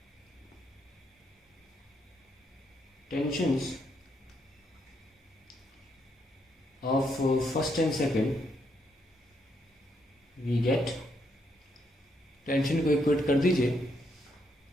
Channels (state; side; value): normal; both; correlation 0.76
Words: tensions of first and second, we get, tension को इक्वेट कर दीजिए।